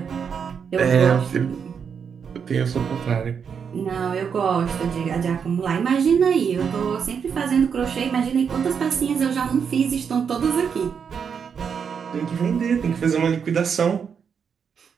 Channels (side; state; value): left; quieter; 6.8 dB